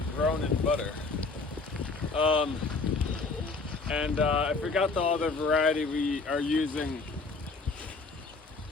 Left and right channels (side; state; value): right; quieter; 3.9 dB